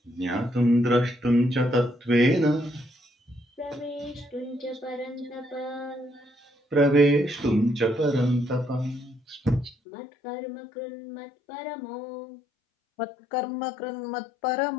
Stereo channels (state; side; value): drops out; right; at 9.8 s